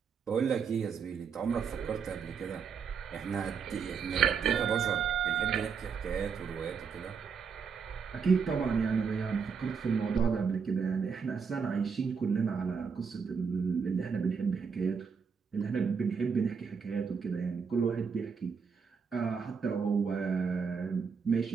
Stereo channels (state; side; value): quieter; left; 6.0 dB